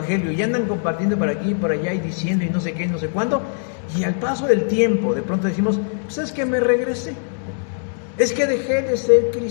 y andan compartiendo por aquí y por allá y diciendo y no sé qué, no sé cuándo, y al paso del tiempo de pronto decimos, pues es que me regresé, es que dejé de ser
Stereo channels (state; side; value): silent; right; digital silence